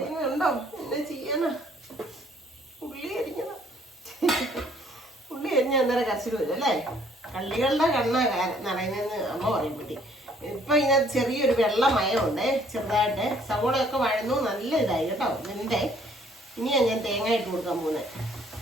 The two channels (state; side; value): normal; both; correlation 0.62